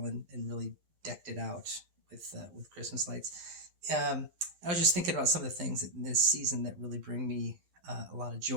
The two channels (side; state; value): left; late; 11 ms